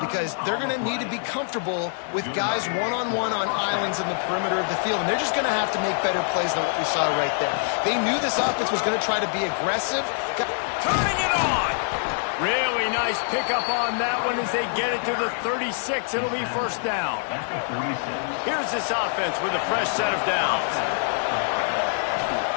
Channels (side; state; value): right; silent; digital silence